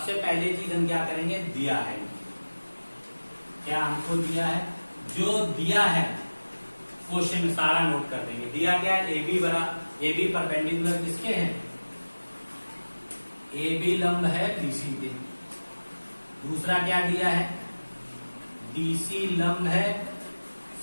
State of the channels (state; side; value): inverted; both; correlation -1.00